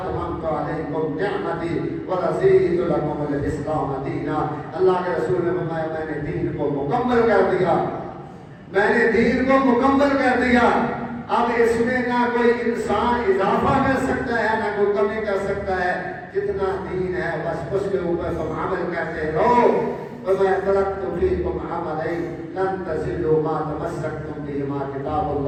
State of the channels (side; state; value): both; identical; correlation 1.00